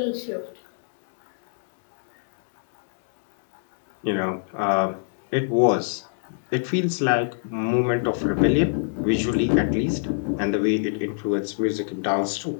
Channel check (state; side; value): silent; right; digital silence